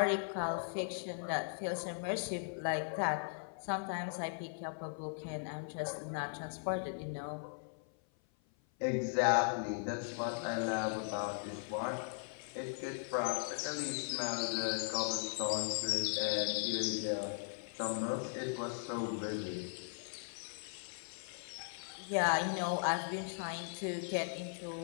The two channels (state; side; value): silent; right; 52 dB below the other